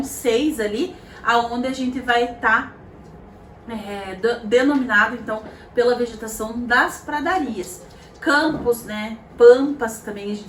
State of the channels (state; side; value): identical; both; correlation 1.00